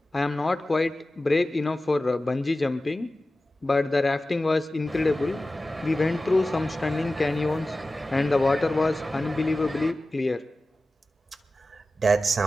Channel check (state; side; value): normal; both; correlation 0.95